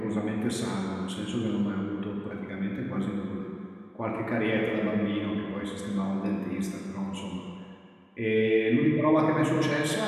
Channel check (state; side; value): identical; both; correlation 1.00